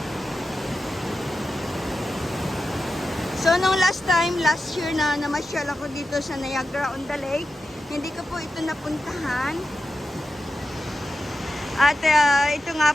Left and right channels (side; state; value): both; normal; correlation 0.91